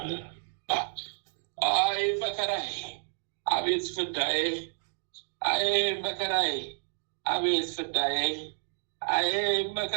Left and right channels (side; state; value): left; silent; digital silence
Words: አይ መከራዬ፣ አቤት ፍዳዬ! አይ መከራዬ፣ አቤት ፍዳዬ! አይ